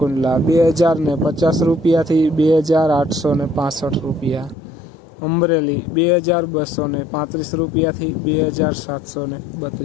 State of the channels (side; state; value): right; drops out; at 4.5 s